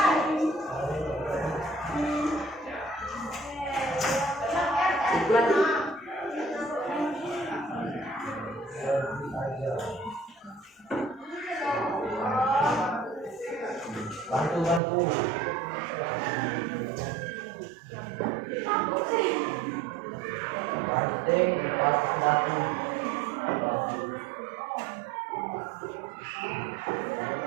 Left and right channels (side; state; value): left; drops out; at 14.8 s